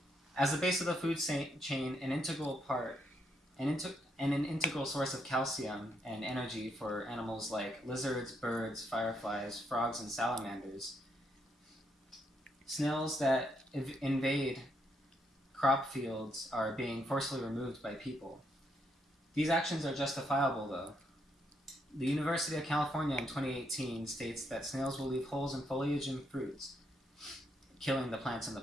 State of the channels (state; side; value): normal; both; correlation 0.76